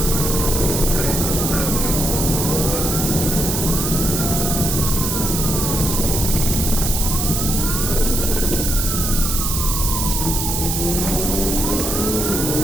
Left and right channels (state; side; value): noise; right; hiss, 1 dB below the sound